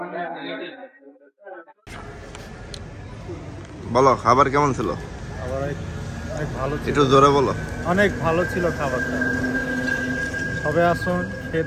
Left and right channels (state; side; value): identical; both; correlation 1.00